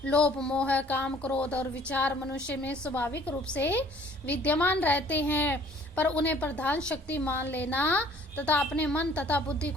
लोभ, मोह, काम, क्रोध और विचार मनुष्य में स्वाभाविक रूप से विद्यमान रहते हैं, पर उन्हें प्रधान शक्ति मान लेना तथा अपने मन तथा बुद्धि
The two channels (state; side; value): normal; both; correlation 0.55